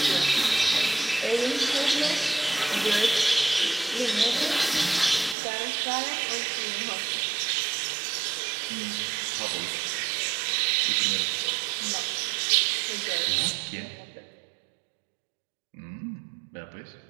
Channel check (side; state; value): left; drops out; at 5.4 s